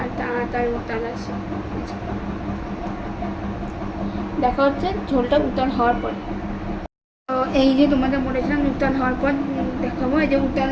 তাড়াতাড়ি উতাল আসে। দেখা হচ্ছে ঝোলটা উতাল হওয়ার পরে। তো এই যে তোমাদের বলেছিলাম উতাল হওয়ার পর দেখাবো, এই যে উতাল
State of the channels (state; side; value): identical; both; correlation 1.00